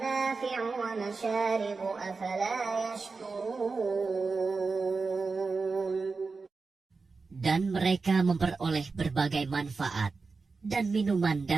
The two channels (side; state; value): left; quieter; 4.3 dB